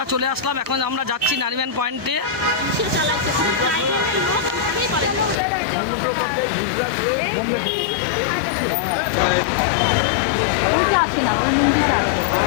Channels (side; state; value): right; drops out; at 5.4 s